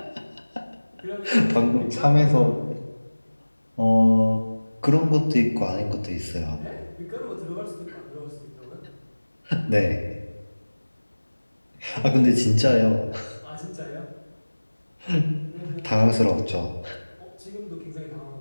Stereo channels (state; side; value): inverted; both; correlation -1.00